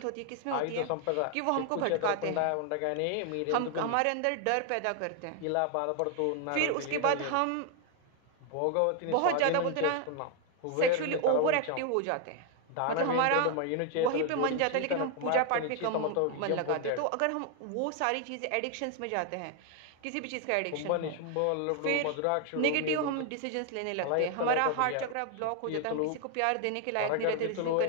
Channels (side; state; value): both; different; correlation 0.00